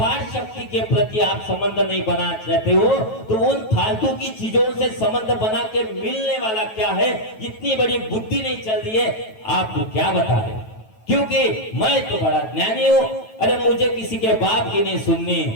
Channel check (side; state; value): right; late; 9.2 ms